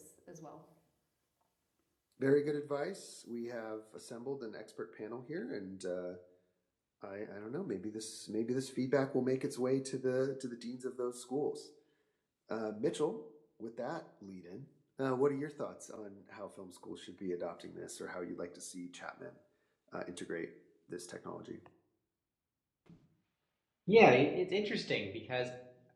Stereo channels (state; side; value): identical; both; correlation 1.00